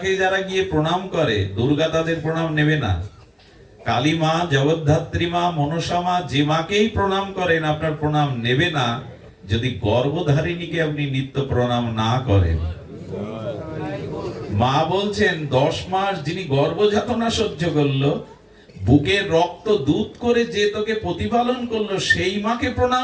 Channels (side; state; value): both; identical; correlation 1.00